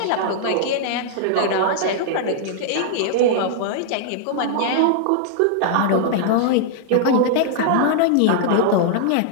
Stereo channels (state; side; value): different; both; correlation -0.01